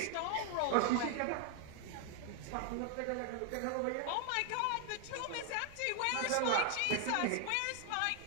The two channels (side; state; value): both; different; correlation 0.00